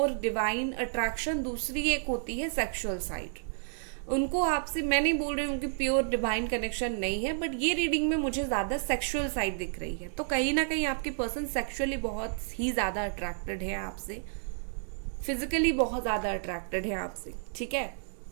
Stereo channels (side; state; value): left; silent; digital silence